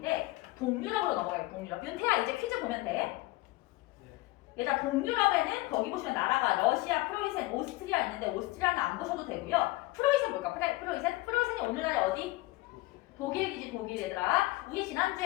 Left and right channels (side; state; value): right; quieter; 20.3 dB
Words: 동유럽으로 넘어가요. 동유럽. 윤태야, 이제 퀴즈 보면 돼. 얘들아, 동유럽에는 거기 보시면 나라가 러시아, 프로이센, 오스트리아 있는데 오스트리아는 안 보셔도 되고요. 프로이센 뭘까? 프로이센이 오늘날에 어디? 독일이지, 독일. 얘들아, 우리